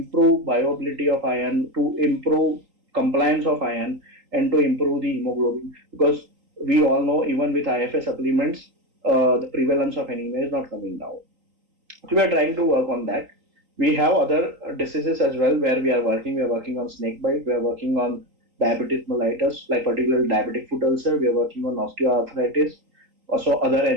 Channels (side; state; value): left; late; 3.8 ms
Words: bioavailability of iron, to improve compliance of iron, and to improve the hemoglobin. Because we all know even with IFA supplements, the prevalence of anemia is not coming down. So we are trying to work on that. We have other diseases as well where we are working. We are working on snake bite. We are working on diabetes mellitus, like particularly diabetic foot ulcer. We are working on osteoarthritis, also other